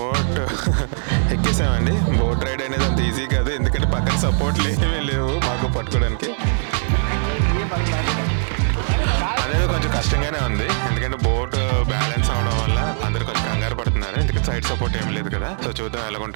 ఎక్కేసామండి. బోట్ రైడ్ అనేది అంత ఈజీ కాదు, ఎందుకంటే పక్కన సపోర్ట్లు ఏమీ లేవు మాకు పట్టుకోవడానికి. అనేది కొంచెం కష్టంగానే ఉంది, ఎందుకంటే బోట్ బ్యాలెన్స్ అవడం వల్ల అందరు కొంచెం కంగారు పడుతున్నారు, ఎందుకంటే సైడ్ సపోర్ట్ ఏమి లేదు కదా. సో చూద్దాం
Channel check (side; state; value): left; silent; digital silence